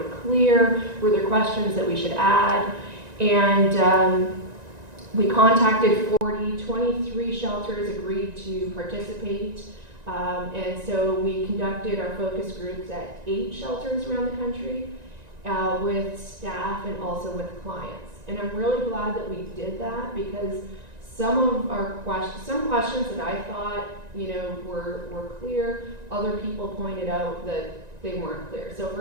clear, were there questions that we should add. And we contacted 23 shelters agreed to participate. And so we conducted our focus groups at 8 shelters around the country with staff and also with clients. And I'm really glad that we did that because some questions that I thought, were clear, other people pointed out that they weren't clear. So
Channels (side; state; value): left; late; 1.9 ms